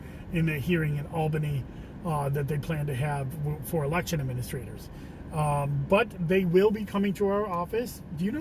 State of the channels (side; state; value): both; identical; correlation 1.00